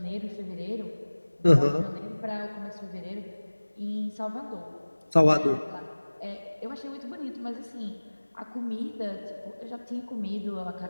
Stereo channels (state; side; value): inverted; both; correlation -1.00